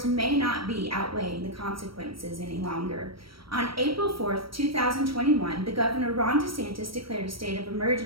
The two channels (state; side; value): late; left; 0.75 ms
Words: may not be outweighing the consequences any longer. On April 4th, 2021, the Governor Ron DeSantis declared a state of